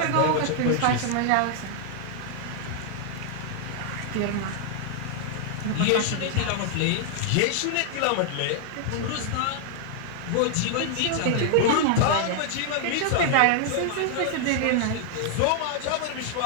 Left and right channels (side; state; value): both; different; correlation 0.00